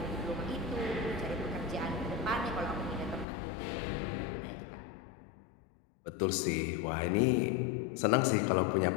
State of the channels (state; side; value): drops out; right; at 3.2 s